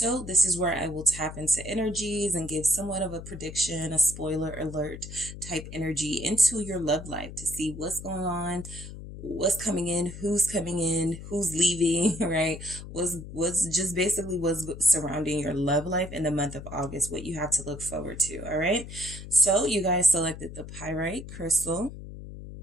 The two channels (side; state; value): left; noise; hum, 12 dB below the sound